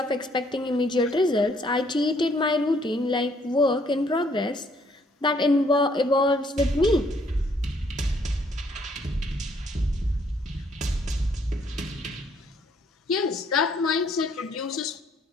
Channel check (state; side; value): normal; both; correlation 0.66